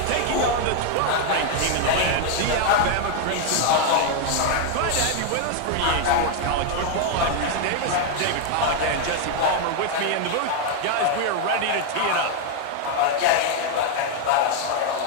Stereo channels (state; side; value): different; both; correlation 0.00